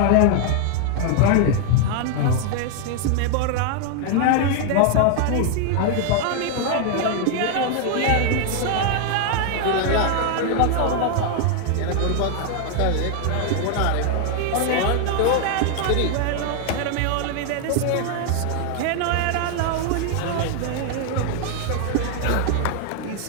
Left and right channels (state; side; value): different; both; correlation 0.00